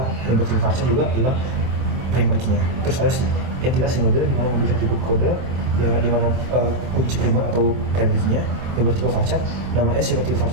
yang bertiga varchar juga adalah primer key-nya. Terus ada entitas sinode, di mana memiliki atribut kode ya, di mana kunci primer atau primer key-nya yang bertipe varchar, nama S yang bertipe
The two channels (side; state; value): left; late; 25 ms